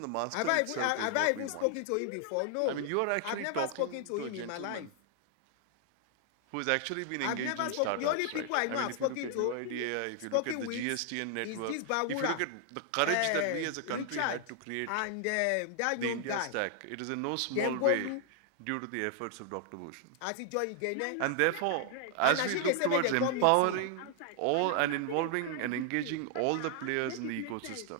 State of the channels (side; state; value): both; different; correlation 0.00